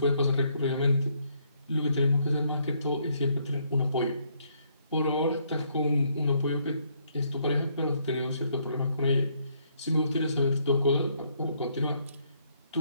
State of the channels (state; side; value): inverted; both; correlation -0.70